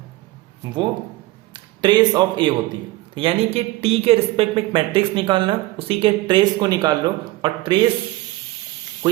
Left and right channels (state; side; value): quieter; left; 18.7 dB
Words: वो ट्रेस ऑफ ए होती है, यानी कि टी के रिस्पेक्ट में एक मैट्रिक्स निकालना, उसी के ट्रेस को निकाल लो, और ट्रेस को